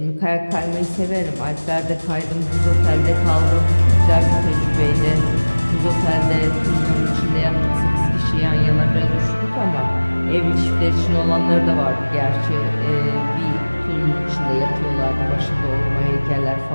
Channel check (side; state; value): both; inverted; correlation -1.00